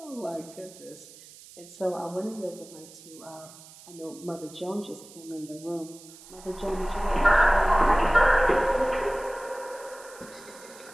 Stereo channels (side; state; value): right; noise; hiss, 20 dB below the sound